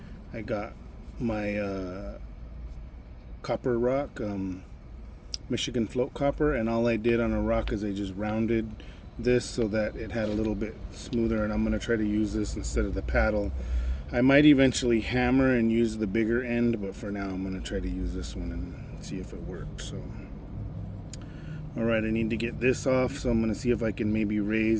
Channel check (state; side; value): identical; both; correlation 1.00